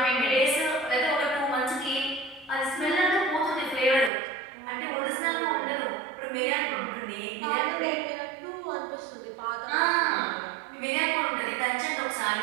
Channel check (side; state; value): left; drops out; at 4.1 s